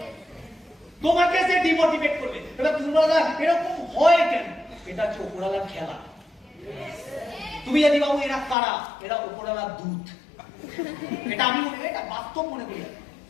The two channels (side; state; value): right; drops out; at 8.6 s